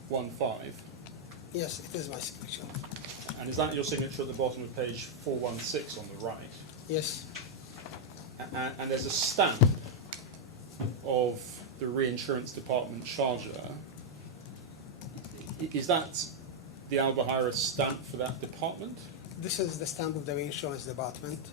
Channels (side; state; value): both; normal; correlation -0.03